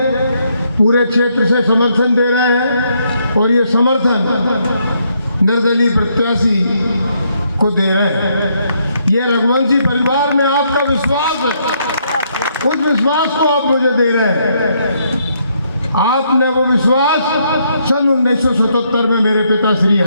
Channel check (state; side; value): inverted; both; correlation -0.73